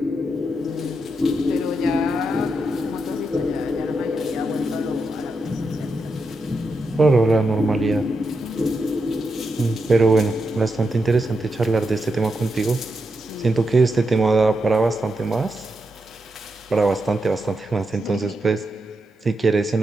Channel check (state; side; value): normal; both; correlation 0.85